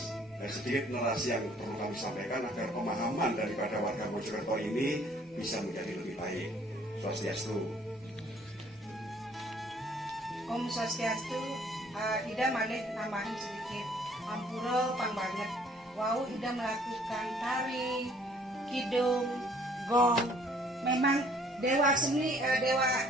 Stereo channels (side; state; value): both; normal; correlation 0.59